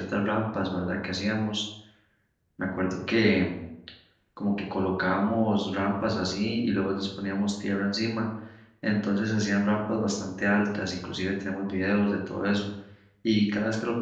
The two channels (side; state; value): both; identical; correlation 1.00